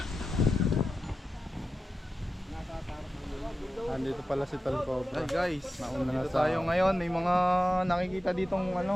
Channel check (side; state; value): both; normal; correlation 0.92